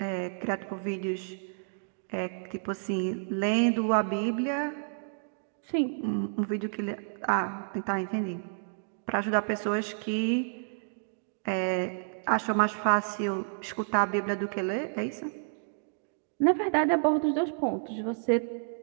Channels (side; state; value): left; silent; digital silence